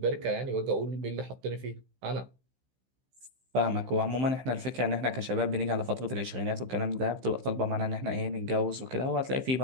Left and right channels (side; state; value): left; late; 15 ms